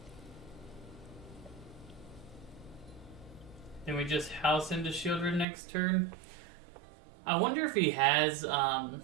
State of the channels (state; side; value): drops out; left; at 5.5 s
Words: Then we just house into Shieldred next turn. I wonder if he has